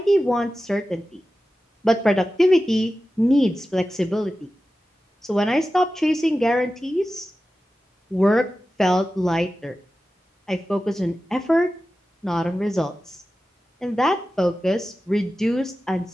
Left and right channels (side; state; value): both; normal; correlation 0.94